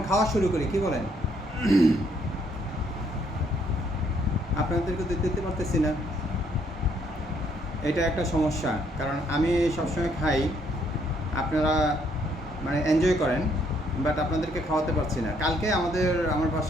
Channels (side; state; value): both; normal; correlation 0.68